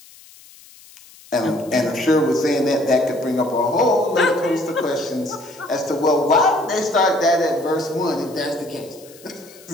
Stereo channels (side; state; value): left; noise; hiss, 23 dB below the sound